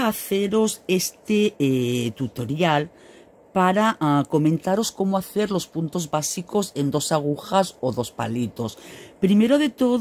haceros este tutorial para comentaros cómo hacer los puntos básicos en dos agujas o dos palitos. Primero de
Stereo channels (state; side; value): identical; both; correlation 1.00